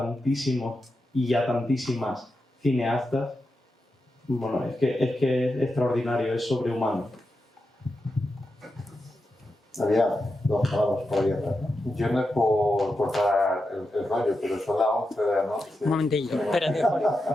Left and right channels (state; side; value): normal; both; correlation 0.88